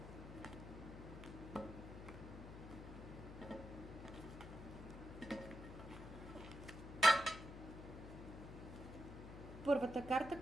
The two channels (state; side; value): noise; left; hum, 11 dB below the sound